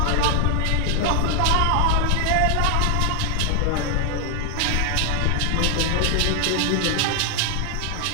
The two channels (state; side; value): different; both; correlation 0.00